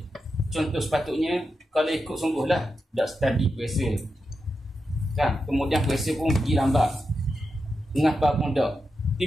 Contoh sepatutnya, kalau ikut sungguhlah, dah study puasa, kan? Kemudian puasa pun pergi lambat, ngapa pun tak,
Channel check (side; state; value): both; normal; correlation 0.88